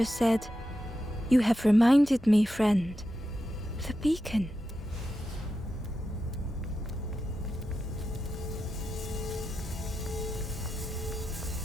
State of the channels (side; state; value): both; normal; correlation 0.89